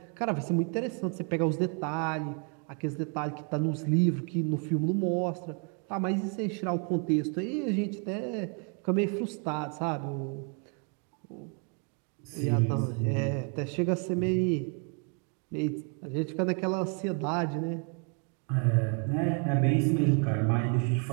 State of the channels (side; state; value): left; quieter; 39.2 dB